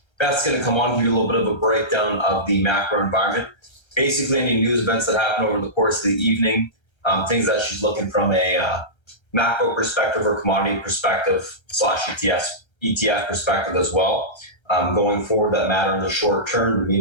Beth's going to come on, give you a little bit of a breakdown of the macro environment. Basically, any news events that happen over the course of the evening, things that she's looking from a macro perspective or commodity perspective / ETF perspective as well. Going forward that matter in the short term, the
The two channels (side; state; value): right; late; 1.3 ms